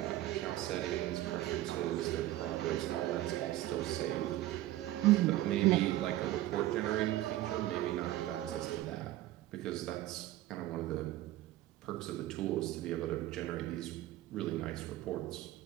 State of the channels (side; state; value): left; quieter; 15.2 dB